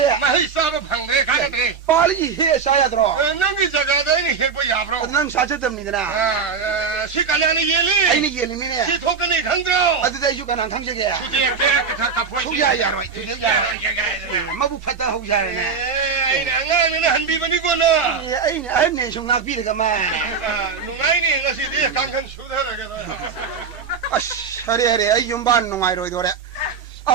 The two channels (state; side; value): quieter; left; 5.6 dB